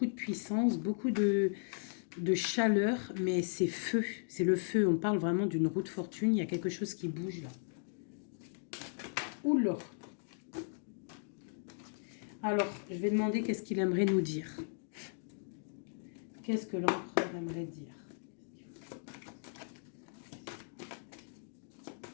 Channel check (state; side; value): silent; right; digital silence